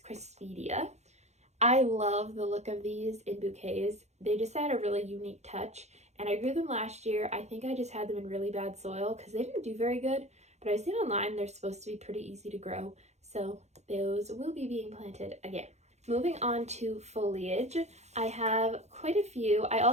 Crispidia. I love the look of these in bouquets. They just add a really unique touch, and I grew them last year. I think I just had them in really bad soil because they didn't do very good, but I've seen online they're supposed to be pretty easy to grow, so those will be being planted again. Moving on to foliage, I have quite a few. I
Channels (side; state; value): left; late; 0.32 ms